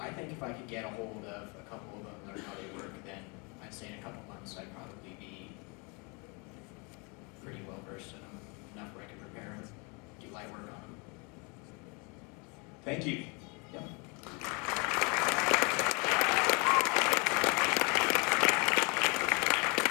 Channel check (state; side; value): quieter; right; 31.5 dB